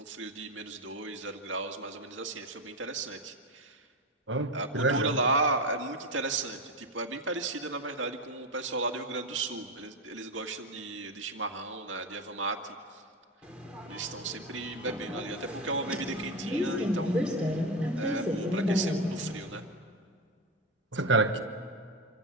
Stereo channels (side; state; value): both; normal; correlation 0.15